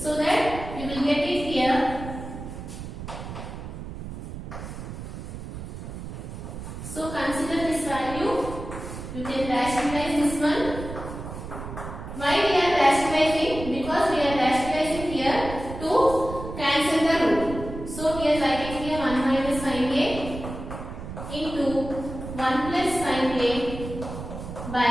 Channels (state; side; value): noise; right; rumble, 9 dB below the sound